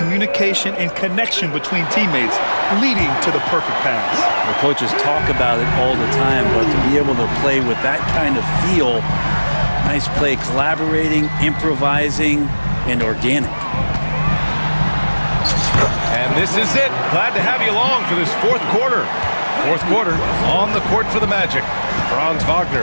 and connection between teammates leading to the perfect pass. The coaches talk about it all the time, but to be able to play with that kind of feel, nice play, collaborating, improvising, and organic. And this is it. Glad to have you along for this fourth quarter. Fourth quarter on the court for the Magic. Franz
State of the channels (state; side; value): inverted; both; correlation -1.00